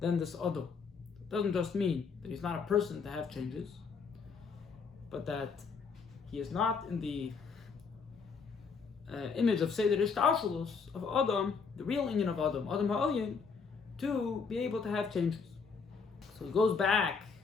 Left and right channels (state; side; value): quieter; right; 5.3 dB